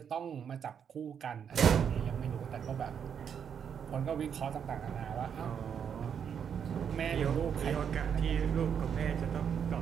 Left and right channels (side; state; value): left; quieter; 7.7 dB